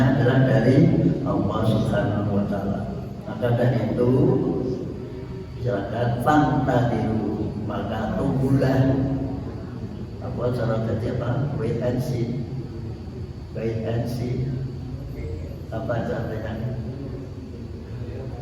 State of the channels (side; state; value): both; identical; correlation 1.00